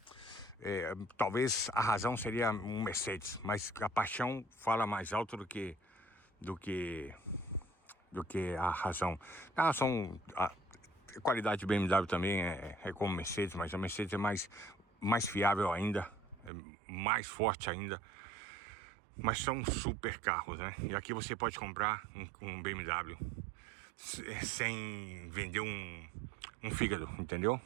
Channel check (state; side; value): drops out; left; at 16.5 s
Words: talvez a razão seria um Mercedes, mas a paixão fala mais alto do que do que a razão. A qualidade de BMW também é como Mercedes, mas a Mercedes é mais fiável ainda, é mais forte ainda. Mas são super carros, né? E aqui você pode comprar um BMW sem vender um fígado, entendeu?